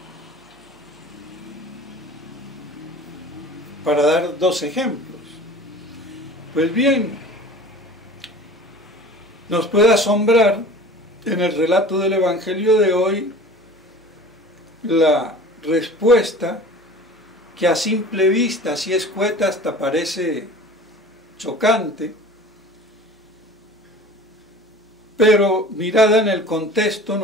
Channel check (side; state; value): both; normal; correlation 0.41